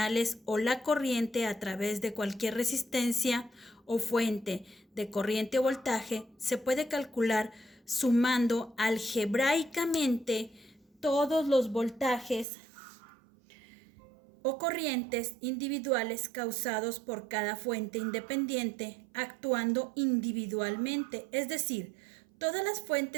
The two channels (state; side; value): drops out; left; at 12.5 s